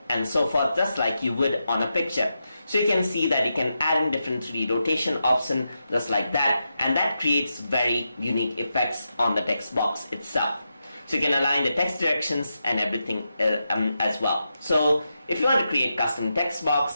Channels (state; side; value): inverted; both; correlation -0.87